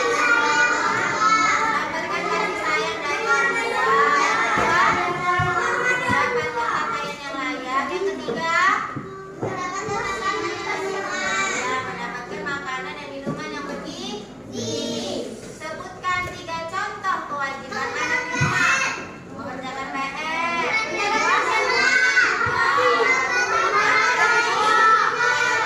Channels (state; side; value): identical; both; correlation 1.00